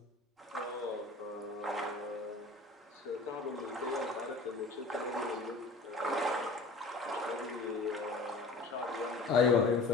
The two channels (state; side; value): quieter; right; 3.2 dB